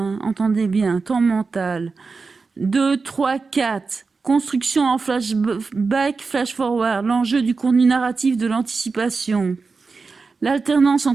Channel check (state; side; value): quieter; left; 4.4 dB